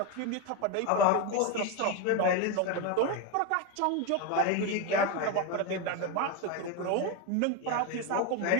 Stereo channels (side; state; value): both; different; correlation 0.03